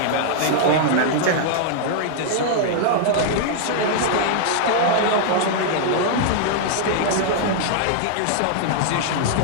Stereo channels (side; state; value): both; different; correlation -0.01